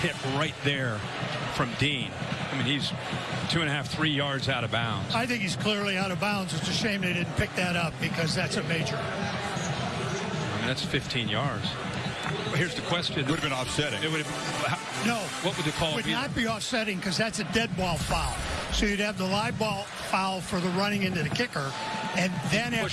right there from Dean. I mean, he's 2.5, 3 yards out of bounds. I think he's clearly out of bounds. It's a shame they didn't pick that up because that's a major. I mean, that's 15 yards. Here's the question. It would have been offsetting. It would have. No. What would the call be? It would not be offsetting because that's a dead ball foul. So you'd have the live ball foul for the running into the kicker, and then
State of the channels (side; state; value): both; identical; correlation 1.00